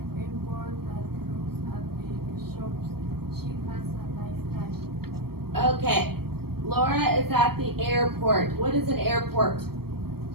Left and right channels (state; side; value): late; left; 0.95 ms